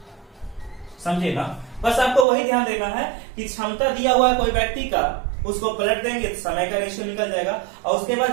समझे ना? बस आपको वही ध्यान देना है कि क्षमता दिया हुआ है कोई व्यक्ति का, उसको पलट देंगे तो समय का रेशियो निकल जाएगा, और उसके बाद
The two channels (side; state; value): left; drops out; at 2.2 s